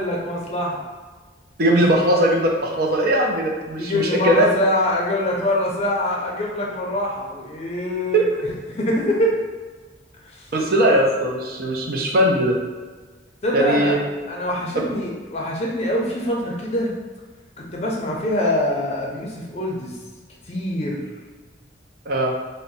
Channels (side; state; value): both; normal; correlation 0.21